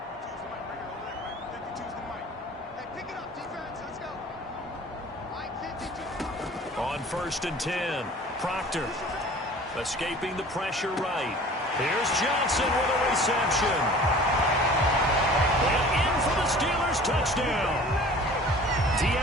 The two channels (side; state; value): both; normal; correlation 0.45